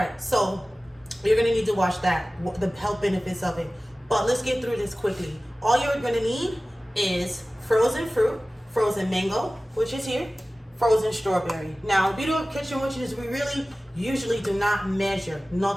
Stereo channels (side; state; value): both; normal; correlation 0.97